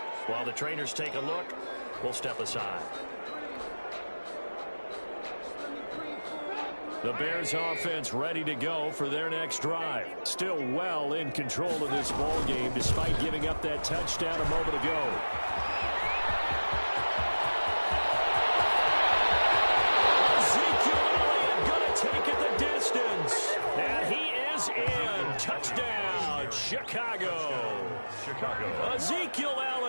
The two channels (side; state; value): both; inverted; correlation -1.00